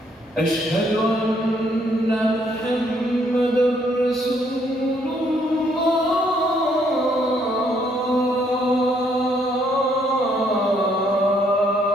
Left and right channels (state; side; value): normal; both; correlation 0.69